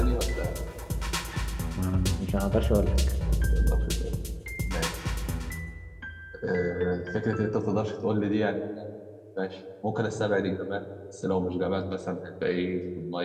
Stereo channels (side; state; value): both; identical; correlation 1.00